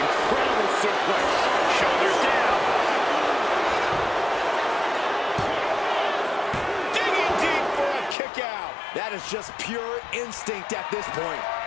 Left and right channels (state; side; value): drops out; right; at 8.2 s